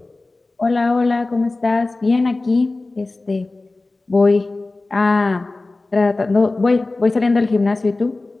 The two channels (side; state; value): right; quieter; 3.2 dB